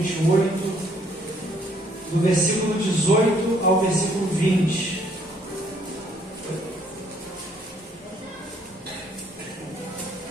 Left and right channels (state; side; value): normal; both; correlation 0.65